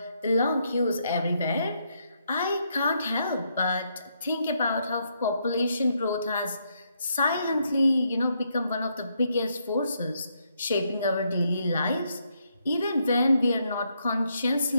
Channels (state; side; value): inverted; both; correlation -0.77